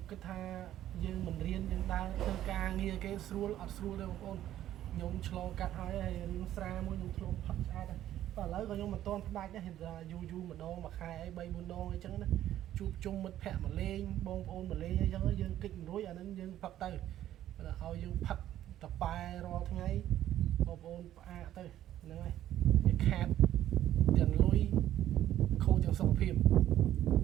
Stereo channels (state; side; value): quieter; left; 12.4 dB